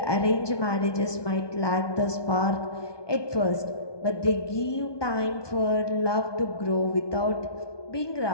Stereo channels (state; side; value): late; right; 1.2 ms